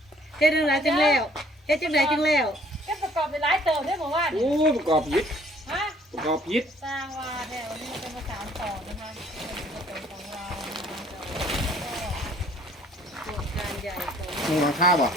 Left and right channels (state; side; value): normal; both; correlation 0.59